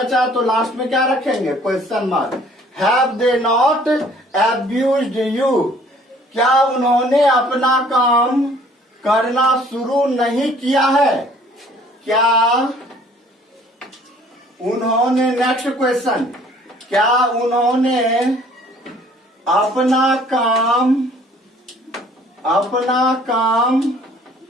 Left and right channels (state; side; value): normal; both; correlation 0.56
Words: तो लास्ट में क्या रखेंगे, question mark. Have they not abused you, क्या उन्होंने अपना काम करना शुरू नहीं किया है? क्या उन्होंने, नेक्स्ट क्वेश्चन, क्या उन्होंने अपना काम